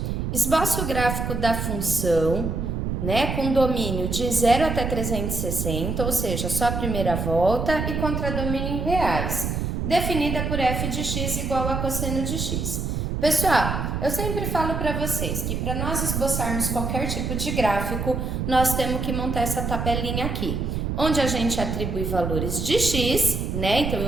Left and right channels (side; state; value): right; noise; rumble, 2 dB below the sound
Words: Esboça o gráfico da função, né, com domínio de 0 até 360, ou seja, só a primeira volta, e contradomínio em reais, definida por f de x igual a cosseno de x. Pessoal, eu sempre falo para vocês que para nós esboçarmos qualquer tipo de gráfico, nós temos que montar essa tabelinha aqui, onde a gente atribui valores de x, né? Então,